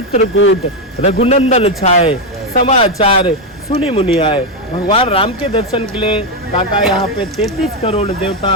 रघुनंदन छाए, समाचार सुनी मुनि आए। भगवान राम के दर्शन के लिए काका यहाँ पे 33 करोड़ देवता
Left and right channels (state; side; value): normal; both; correlation 0.06